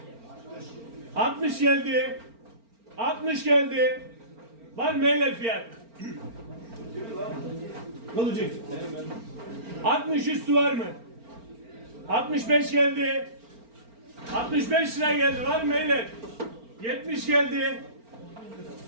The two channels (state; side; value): late; left; 4.4 ms